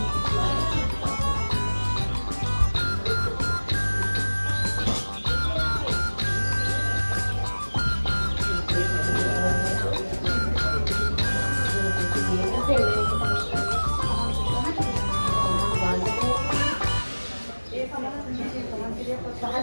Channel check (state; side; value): inverted; both; correlation -1.00